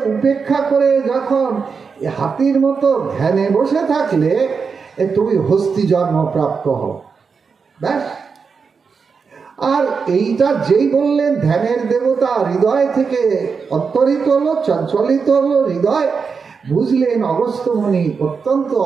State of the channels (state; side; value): quieter; left; 5.5 dB